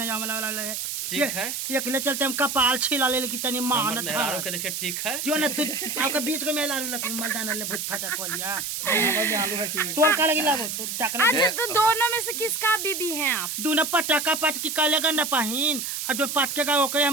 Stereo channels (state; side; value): noise; right; hiss, 4 dB below the sound